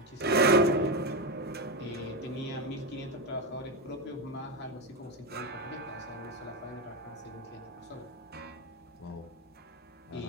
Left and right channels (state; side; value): normal; both; correlation 0.12